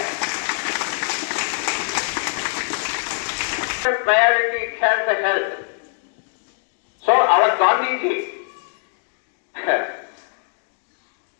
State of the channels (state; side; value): silent; right; digital silence